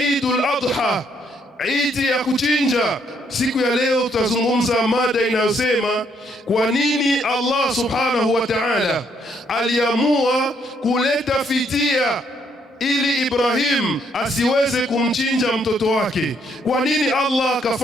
Adha, Eid ya kuchinja. Siku ya leo tutazungumza mada inayosema kwa nini Allah subhanahu wa ta'ala aliamua kuleta fidia ili Ibrahim asiweze kumchinja mtoto wake. Kwa nini Allah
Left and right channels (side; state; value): both; normal; correlation 0.71